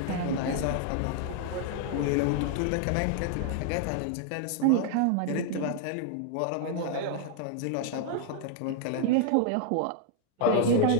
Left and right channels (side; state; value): both; different; correlation 0.00